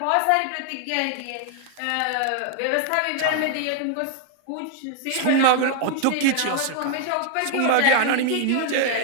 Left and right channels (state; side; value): different; both; correlation 0.00